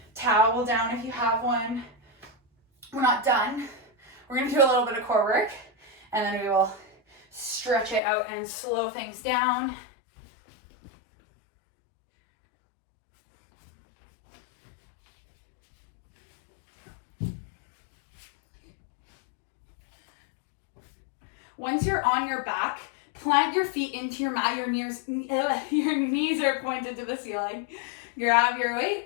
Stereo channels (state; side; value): drops out; right; at 8.0 s